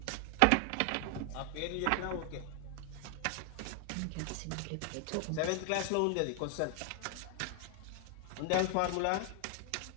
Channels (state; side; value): different; both; correlation 0.00